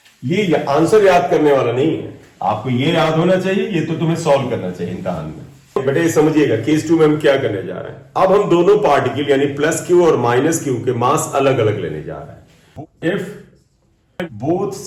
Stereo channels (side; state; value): both; identical; correlation 1.00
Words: ये आंसर याद करने वाला नहीं है, आपको ये याद होना चाहिए, ये तो तुम्हें सॉल्व करना चाहिए इम्तिहान में। बेटा ये समझिएगा केस 2 में हम क्या करने जा रहे हैं। अब हम दोनों पार्टिकल यानी प्लस क्यू और माइनस क्यू के मास अलग अलग लेने जा रहे हैं। If both